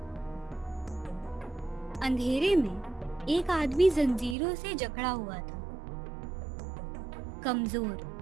अंधेरे में एक आदमी जंजीरों से जकड़ा हुआ था, कमजोर,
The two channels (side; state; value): left; drops out; at 4.4 s